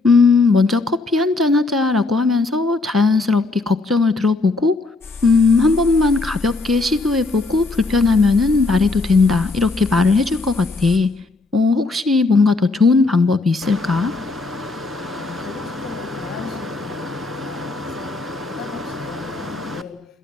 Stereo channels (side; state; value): right; quieter; 3.5 dB